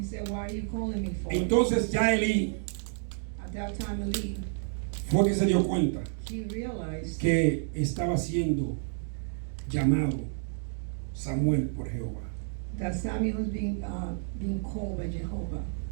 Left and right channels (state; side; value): silent; left; digital silence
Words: said, "Why are you calling me for?" Entonces ya Elí At that time, Eli, fue que se dio cuenta he realized que estaba siendo llamado Samuel por Jehová. that Samuel was being called by Jehovah.